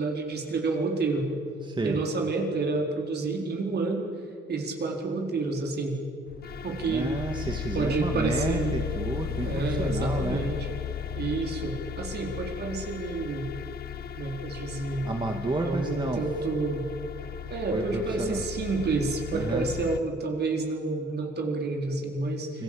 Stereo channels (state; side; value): normal; both; correlation 0.58